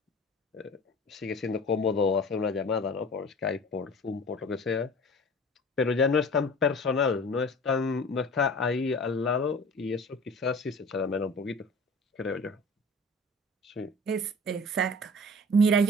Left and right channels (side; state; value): both; normal; correlation 0.42